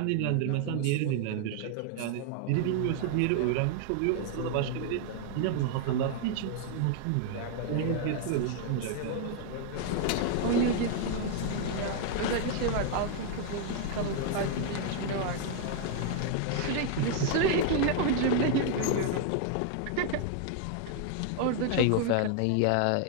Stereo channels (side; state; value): both; different; correlation 0.00